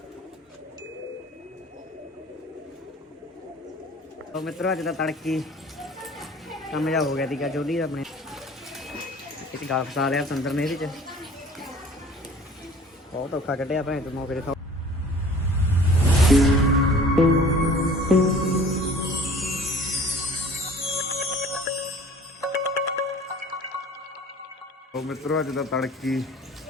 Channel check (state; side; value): normal; both; correlation 0.47